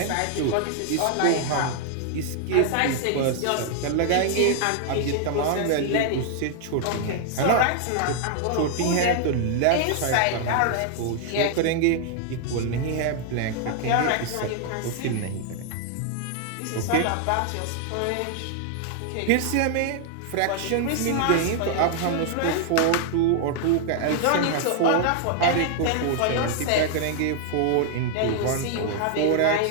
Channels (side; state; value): both; different; correlation 0.00